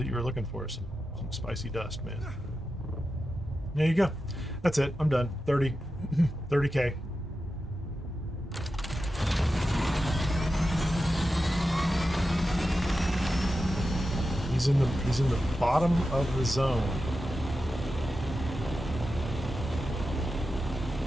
you were looking for. Some spicy dust, man. There you go. That's it. I'm done. 30K. He's in the bottom of the zone.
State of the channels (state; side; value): normal; both; correlation 0.91